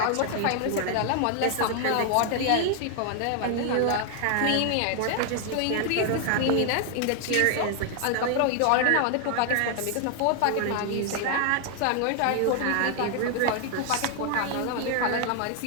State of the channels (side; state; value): both; different; correlation 0.00